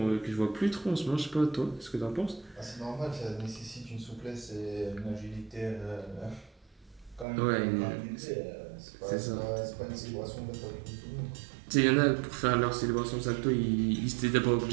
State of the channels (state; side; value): drops out; left; at 7.2 s